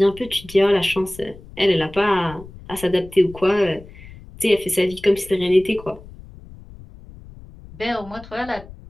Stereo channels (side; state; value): left; noise; rumble, 18 dB below the sound